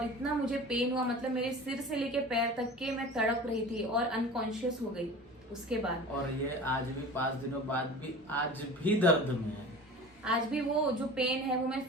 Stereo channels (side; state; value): both; normal; correlation 0.37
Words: इतना मुझे पेन हुआ, मतलब मेरे सिर से लेके पैर तक के मैं तड़प रही थी और अनकॉन्शियस हो गई उसके बाद। और ये आज भी 5 दिनों बाद भी आज भी दर्द में है। आज भी वो जो पेन है वो मैं